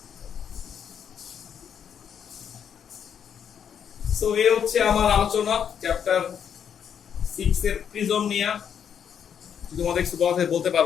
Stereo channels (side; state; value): right; quieter; 8.2 dB